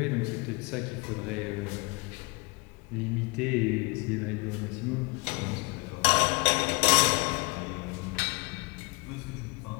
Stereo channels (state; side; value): quieter; right; 28.3 dB